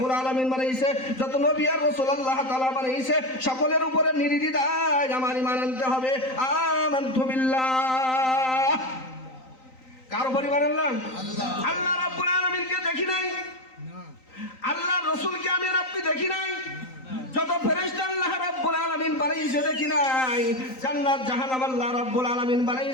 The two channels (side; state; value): right; late; 3.9 ms